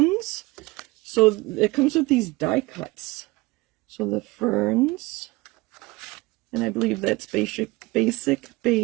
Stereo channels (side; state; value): left; quieter; 22.3 dB